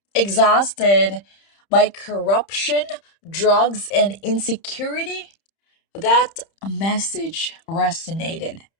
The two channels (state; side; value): late; right; 30 ms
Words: exhausted by corruption, drugs, and insecurity, that message resonated.